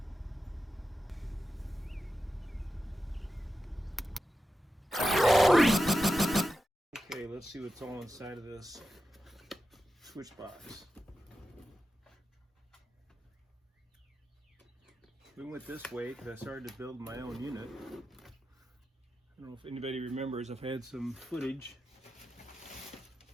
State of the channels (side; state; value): both; normal; correlation 0.91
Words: Okay, let's see what's all inside of this switch box. We went this way because I started to build my own unit. I don't know if anybody remembers, I've had some footage.